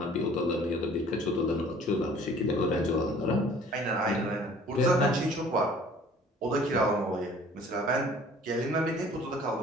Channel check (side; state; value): both; normal; correlation 0.52